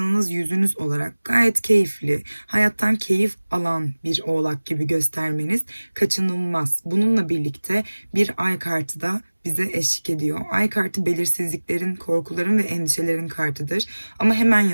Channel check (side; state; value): both; inverted; correlation -1.00